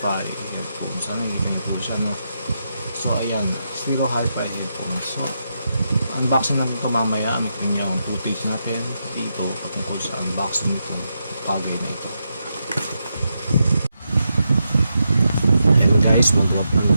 headphone. Sana nakita niyo po siya, no? So, ayan. Stereo hi-fi headphone. So, unboxing natin ito mamaya. May kanya yung footage natin dito patungkol sa unboxing nitong bagay na ito. Guys,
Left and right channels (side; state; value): both; inverted; correlation -0.84